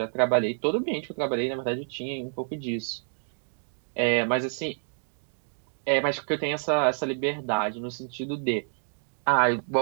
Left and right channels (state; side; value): silent; left; digital silence